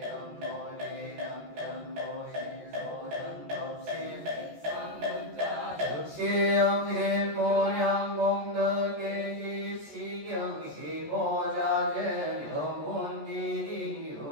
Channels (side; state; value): left; late; 14 ms